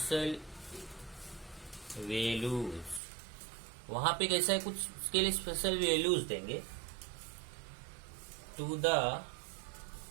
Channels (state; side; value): drops out; left; at 3.0 s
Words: values. वहां पे कैसा है, कुछ उसके लिए स्पेशल वैल्यूज देंगे to the